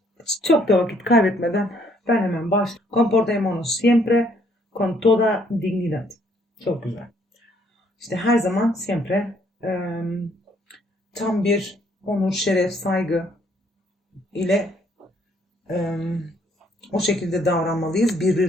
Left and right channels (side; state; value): both; normal; correlation 0.66